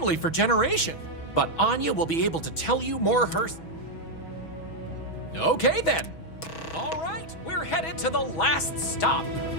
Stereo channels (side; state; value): right; late; 6.2 ms